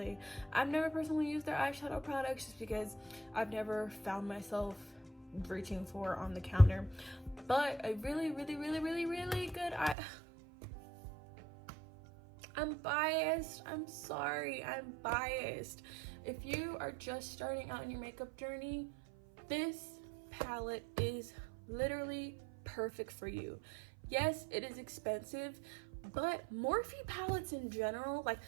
I've never personally used their eyeshadow products just because I've never found myself reaching for on the counter. But a really good I'm biased. I'm sorry. I'm biased. If you are just starting out in your makeup journey, this palette is literally perfect for you. Yes, it is expensive, but Morphe palettes in general, like,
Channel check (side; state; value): left; drops out; at 10.0 s